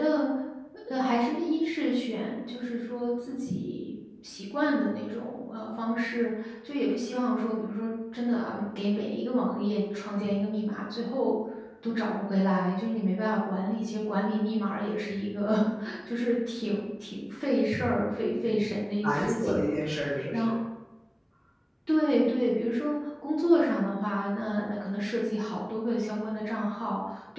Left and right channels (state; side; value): identical; both; correlation 1.00